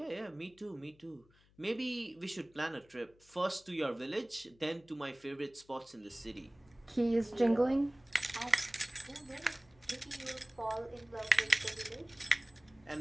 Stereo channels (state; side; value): noise; left; hum, 30 dB below the sound